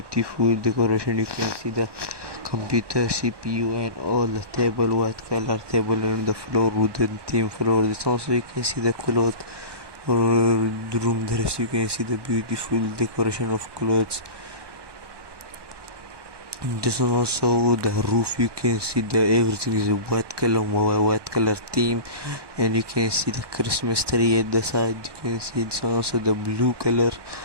decoration. You can see the computer, CPU and all, the table, white color table, and the floor wooden theme floor. This also you can see the cloth or the room dress. You can see the beautiful decoration of clothes. This one also the roof. You can see the everything is a white color theme, and you can see the Christmas tree at the side. You can see this one also the blue color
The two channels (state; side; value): late; left; 1.2 ms